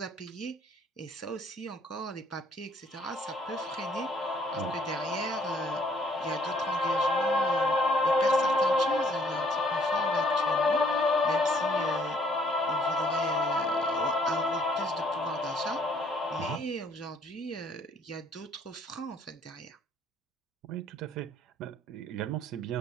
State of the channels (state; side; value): normal; both; correlation 0.63